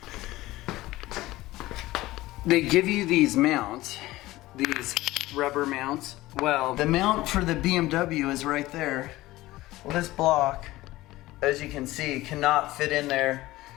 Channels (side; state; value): right; quieter; 17.7 dB